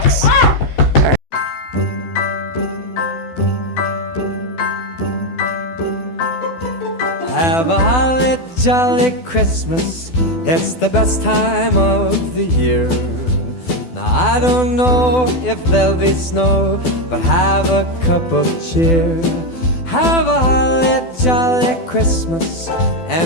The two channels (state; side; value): late; right; 12 ms